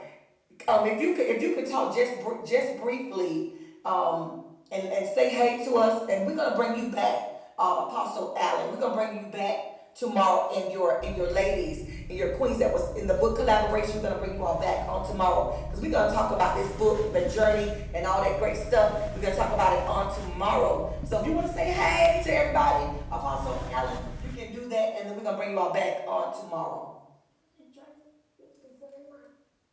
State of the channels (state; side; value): identical; both; correlation 1.00